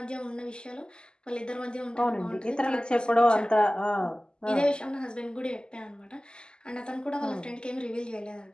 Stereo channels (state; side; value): late; right; 0.047 ms